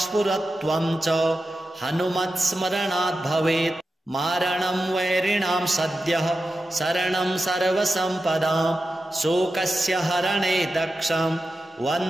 च हनुमत्स्मरणात् भवेत् मारणं वैरिणां सद्यः शरणं सर्वसम्पदां शोकस्य हरणे दक्षं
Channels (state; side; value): normal; both; correlation 0.92